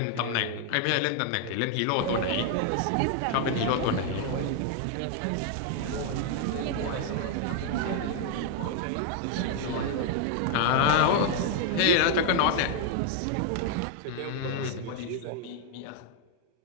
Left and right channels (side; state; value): both; different; correlation 0.00